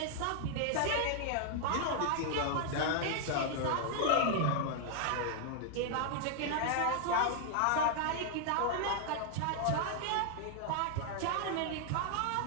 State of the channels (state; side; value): different; both; correlation 0.00